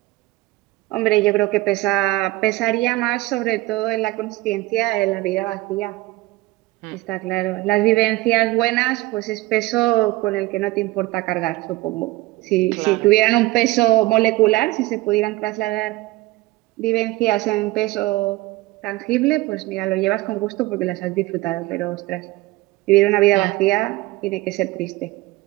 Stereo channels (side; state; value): left; quieter; 19.6 dB